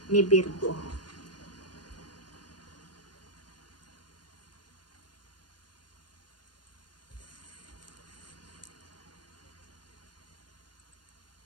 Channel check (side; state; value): right; late; 0.71 ms